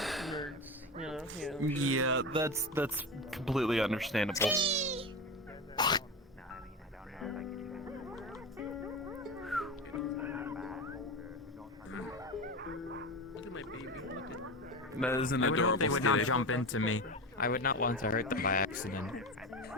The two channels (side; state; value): both; normal; correlation 0.23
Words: Yeah, that's completely understandable. That is an I would adorable hope they would skitty. not jump into me. I would not want to hurt them by accident.